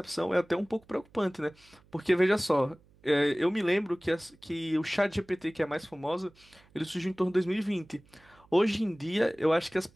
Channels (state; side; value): noise; right; hum, 29 dB below the sound